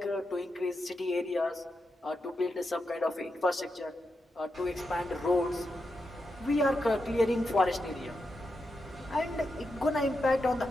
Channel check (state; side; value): normal; both; correlation 0.87